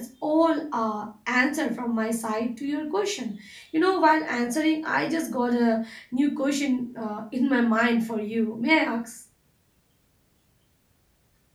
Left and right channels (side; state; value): both; identical; correlation 1.00